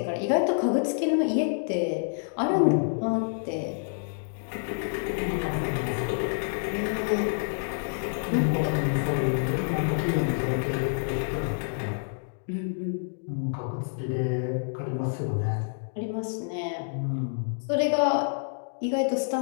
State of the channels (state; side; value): silent; right; digital silence